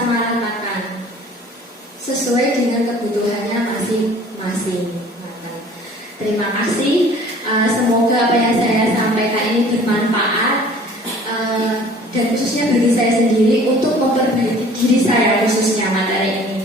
sesuai dengan kebutuhannya masing-masing. Terima kasih. Semoga apa yang saya sampaikan ini bermanfaat dan khususnya bagi saya sendiri untuk memperbaiki diri saya khususnya materi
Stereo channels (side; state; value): both; normal; correlation 0.50